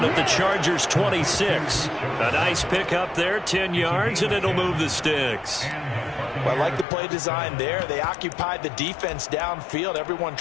at the Chargers' 26. A nice pickup there, 10 yards, and it'll move the sticks. Well, I like the play design there. They occupied the defense downfield, everyone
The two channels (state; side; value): drops out; right; at 6.9 s